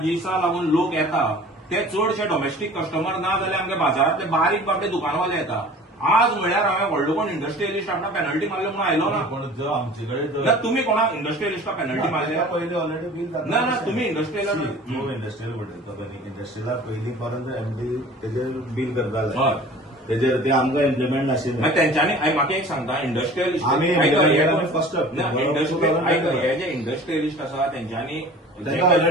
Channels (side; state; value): both; normal; correlation 0.44